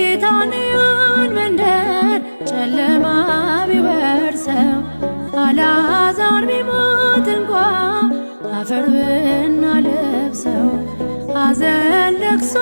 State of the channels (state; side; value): inverted; both; correlation -1.00